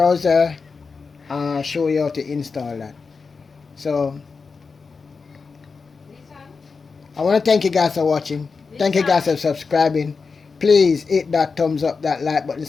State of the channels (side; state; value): right; quieter; 4.8 dB